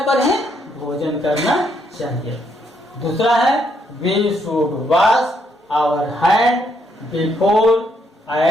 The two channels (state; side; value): normal; both; correlation 0.74